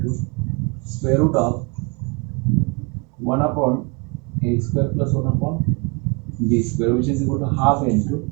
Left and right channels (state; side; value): quieter; left; 31.0 dB